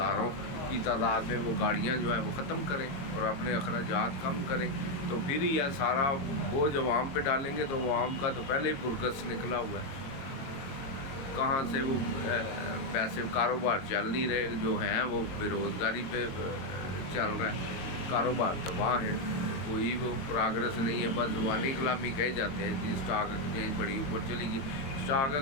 की तादाद में वो गाड़ियां जो है वो ख़त्म करें और अपने अखराजात कम करें, तो फिर ही यह सारा बोझ अवाम पे डालेंगे तो अवाम का तो पहले ही बुरकस निकला हुआ है। कहाँ से वो पैसे, कारोबार चल नहीं रहे, जो हैं वो बेरोज़गारी पे चल रहा है, कारोबार तबाह है, कोई वो प्रोग्रेस नहीं है, बस ज़ुबानी कलामी कहे जाते हैं जी स्टॉक एक्सचेंज बड़ी ऊपर चली गई। स्टॉक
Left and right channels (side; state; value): right; late; 22 ms